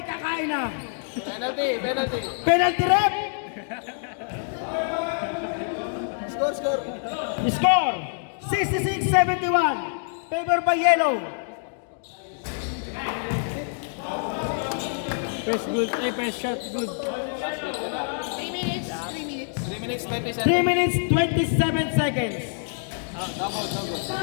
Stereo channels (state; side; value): silent; right; digital silence